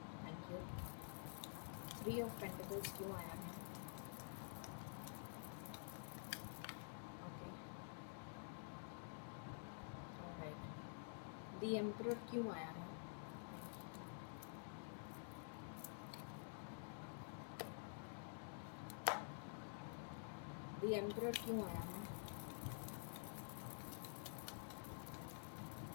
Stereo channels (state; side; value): silent; right; digital silence